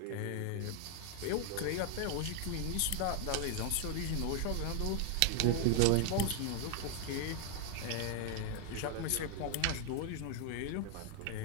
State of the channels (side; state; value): both; different; correlation 0.00